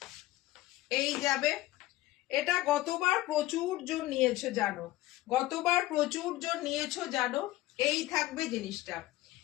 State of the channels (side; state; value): right; quieter; 16.9 dB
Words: এই যাবে, এটা গতবার প্রচুর জন নিয়েছো জানো, গতবার প্রচুর জন নিয়েছো জানো। এই থাকবে জিনিসটা,